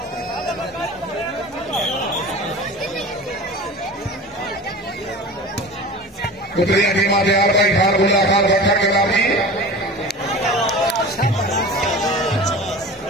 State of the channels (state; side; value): normal; both; correlation 0.35